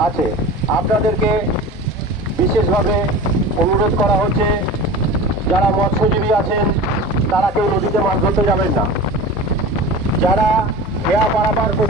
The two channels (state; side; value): normal; both; correlation 0.34